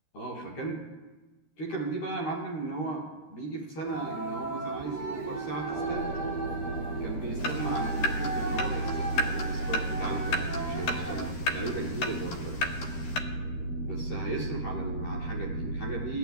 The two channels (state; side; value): late; right; 13 ms